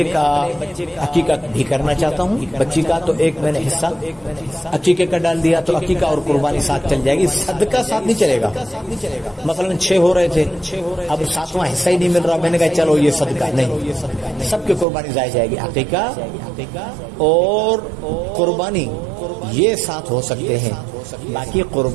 کا عقیقہ بھی کرنا چاہتا ہوں بچی کا، تو ایک میں نے حصہ عقیقے کا ڈال دیا تو عقیقہ اور قربانی ساتھ چل جائے گی. صدقہ ساتھ نہیں چلے گا. مثلا 6 ہو رہے تھے، اب 7واں حصہ ہی نہیں مل رہا، میں نے کہا چلو یہ صدقہ نہیں، سب کی قربانی ضائع جائے گی. عقیقہ اور قربانی یہ ساتھ ہو سکتے ہیں، باقی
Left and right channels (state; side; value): drops out; left; at 14.9 s